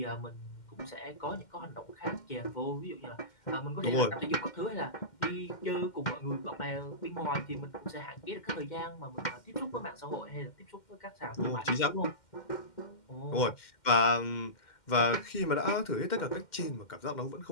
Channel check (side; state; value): right; late; 2.1 ms